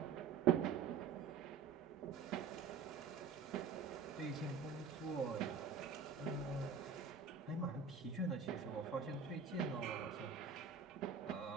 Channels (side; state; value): left; quieter; 6.0 dB